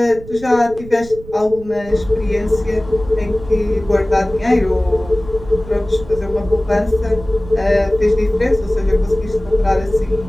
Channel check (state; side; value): noise; right; rumble, 16 dB below the sound